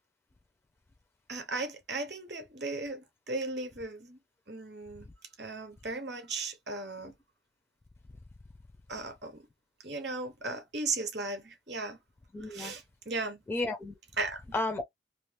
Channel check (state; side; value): normal; both; correlation 0.33